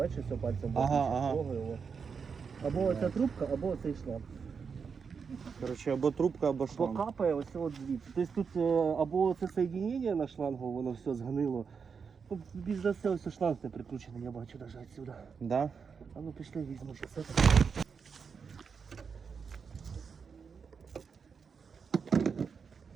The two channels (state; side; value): quieter; left; 5.9 dB